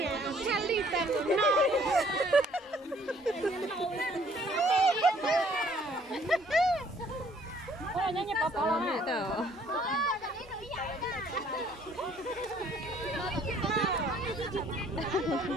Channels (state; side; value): normal; both; correlation 0.61